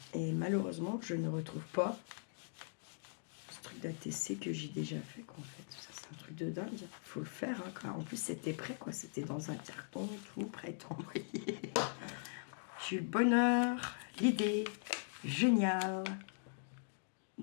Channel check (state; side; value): silent; right; digital silence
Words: malheureusement, je ne retrouve pas ce truc d'ATC que j'ai déjà fait. Quoi, en fait, ça c'est un truc de dingue. Il faut le faire. Hein, quoi. En plus, c'était prêt, quoi. C'était dans un carton, tout prêt à envoyer. J'ai eu le bonheur, l'idée génial